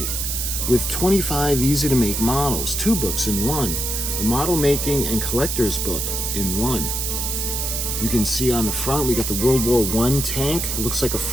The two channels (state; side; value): noise; right; hiss, 2 dB below the sound